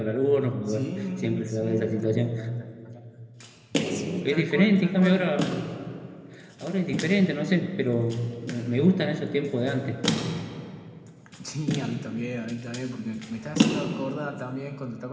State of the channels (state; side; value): identical; both; correlation 1.00